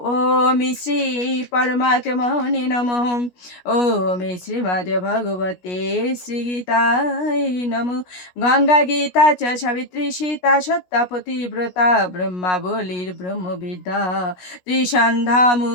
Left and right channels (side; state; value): right; late; 16 ms